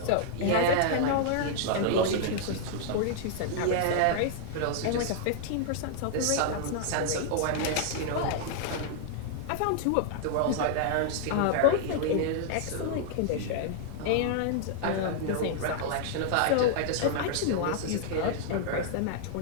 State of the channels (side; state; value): both; different; correlation -0.01